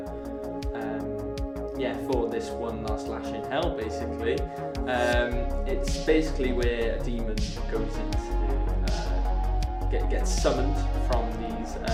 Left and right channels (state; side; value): identical; both; correlation 1.00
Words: for this One Last Lash in Hell. Basically, it's basically where a demon goes into gets summoned from these